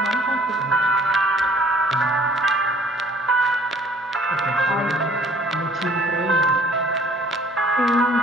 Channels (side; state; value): both; normal; correlation 0.56